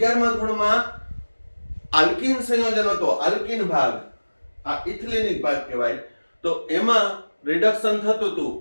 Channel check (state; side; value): inverted; both; correlation -1.00